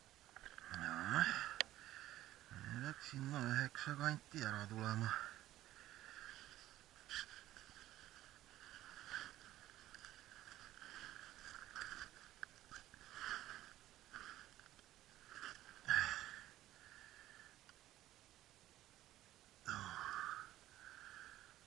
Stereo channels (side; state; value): left; quieter; 14.4 dB